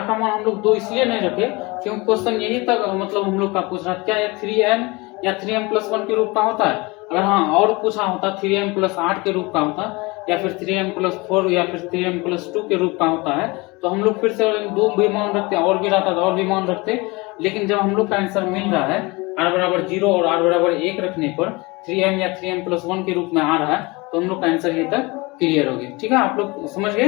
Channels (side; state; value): right; quieter; 24.9 dB